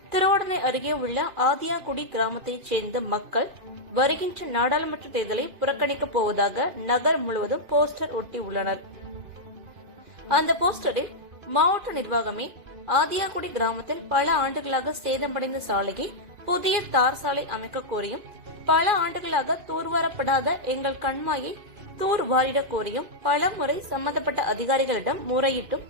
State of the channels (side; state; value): left; late; 2.5 ms